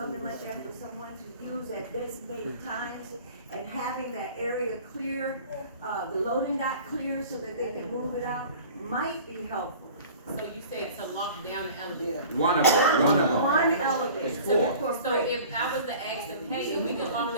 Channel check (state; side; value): inverted; both; correlation -0.44